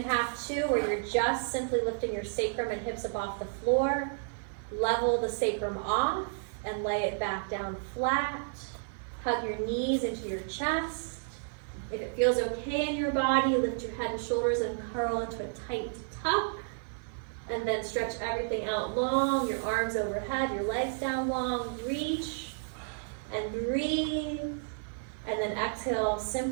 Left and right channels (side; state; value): left; silent; 57 dB below the other